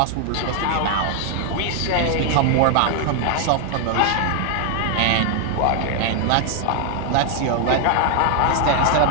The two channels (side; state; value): both; different; correlation 0.00